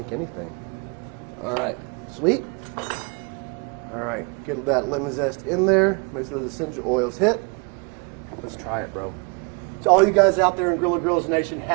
anything. All right. Sweet. All right. Get that lemon zest in there. Make sure those essential oils hit. Let's try it, bro. To all you guys out there in Grilla Grills Nation,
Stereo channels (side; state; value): left; quieter; 31.9 dB